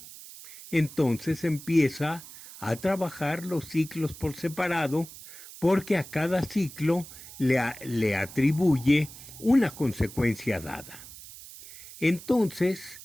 Entonces empieza a trabajar los ciclos por separado, porque a cada ciclo le atribuye una consecuencia dada. Entonces,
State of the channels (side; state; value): right; noise; hiss, 16 dB below the sound